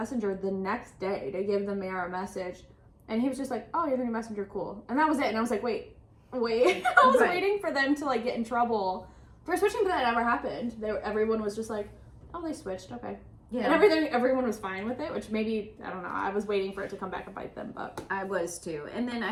the next day to give the mayor a message, and he was just like, oh, you're the new Messenger, cool. And that was it. And I was like, wait. I was waiting for them to like get in trouble for switching, but that never happened. Everyone was just like, oh, they switched, okay. Yeah. And everyone was fine with it, which maybe, I don't know, I was waiting for it to come back and bite them, but. I was too. And then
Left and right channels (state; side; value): identical; both; correlation 1.00